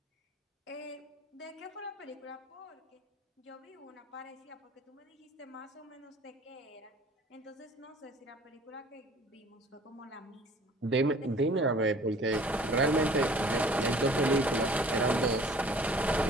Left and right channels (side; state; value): both; normal; correlation 0.51